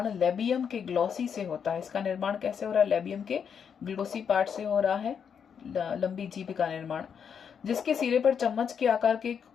लेबियम के ग्लोसी से होता है। इसका निर्माण कैसे हो रहा है? लेबियम के ग्लोसी पार्ट से हो रहा है लंबी जीभ का निर्माण, जिसके सिरे पर चम्मच के आकार के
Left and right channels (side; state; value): right; quieter; 7.3 dB